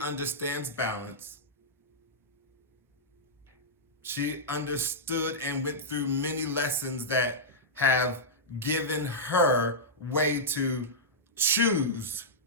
balance. She understood and went through many lessons that have given her way to choose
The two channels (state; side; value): normal; both; correlation -0.12